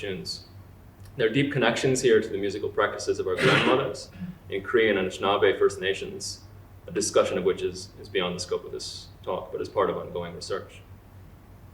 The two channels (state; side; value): identical; both; correlation 1.00